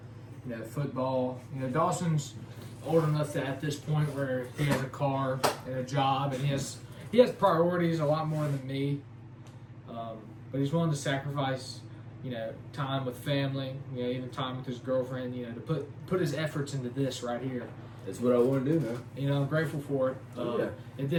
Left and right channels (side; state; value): both; identical; correlation 1.00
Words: Football. Dawson's old enough that at this point where he has a car and a job, and he has priorities a lot more than me. But he's willing to sacrifice, time with family, even time with his girlfriend, to put his efforts into this right here. That's what I want to do, man. I'm grateful for it. If